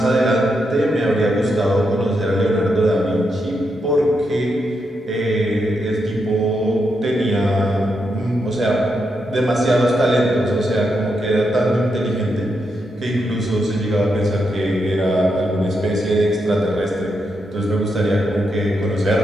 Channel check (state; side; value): normal; both; correlation 0.83